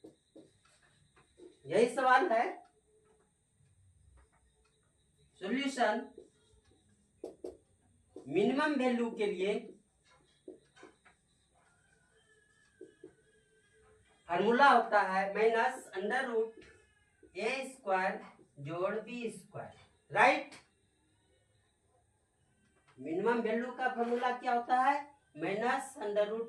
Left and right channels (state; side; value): identical; both; correlation 1.00